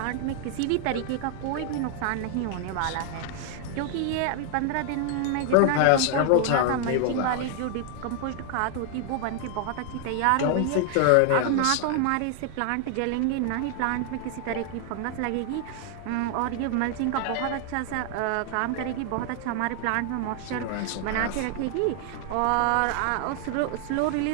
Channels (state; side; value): different; both; correlation 0.00